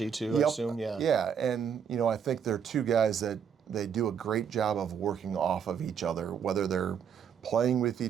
too, I assume, yeah. Yeah, and I think they're two guys that they do a great job of working off of each other, whether they're playing with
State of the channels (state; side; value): quieter; left; 7.6 dB